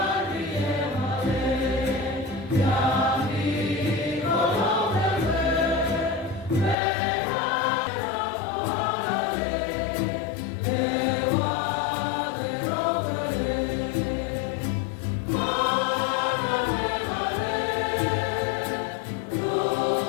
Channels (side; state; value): right; drops out; at 6.8 s